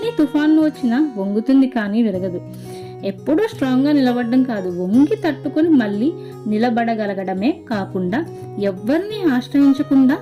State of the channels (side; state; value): both; identical; correlation 1.00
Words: తుఫాన్లు వచ్చినా వంగుతుంది కానీ విరగదు. ఎప్పుడూ స్ట్రాంగ్గా నిలబడడం కాదు, వంగి తట్టుకుని మళ్ళీ నిలబడగలగడమే కాకుండా ఎవరిని ఆశ్రయించకుండా